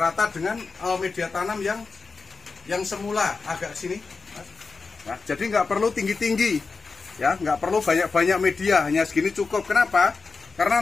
dengan media tanam yang semula agak sini. Nah, jadi nggak perlu tinggi-tinggi ya, nggak perlu banyak-banyak media, hanya segini cukup. Kenapa?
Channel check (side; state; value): right; quieter; 4.5 dB